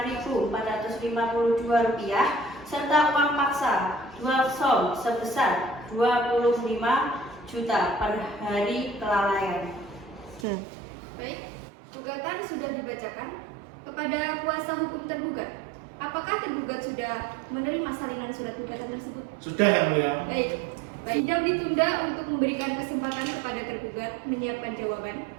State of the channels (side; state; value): left; drops out; at 10.5 s